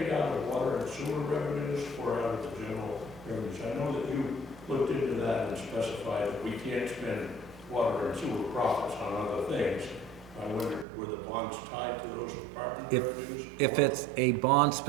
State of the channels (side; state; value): left; drops out; at 10.9 s